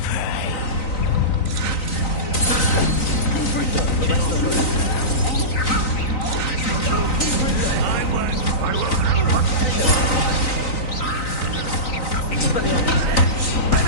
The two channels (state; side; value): late; right; 3.9 ms